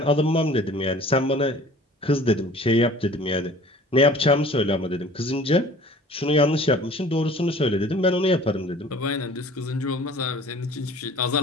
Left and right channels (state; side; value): normal; both; correlation 0.48